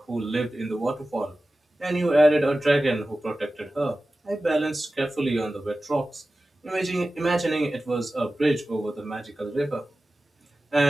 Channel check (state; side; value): normal; both; correlation 0.95